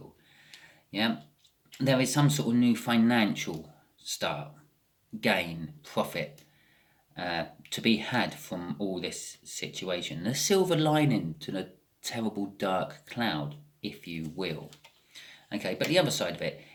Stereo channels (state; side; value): identical; both; correlation 1.00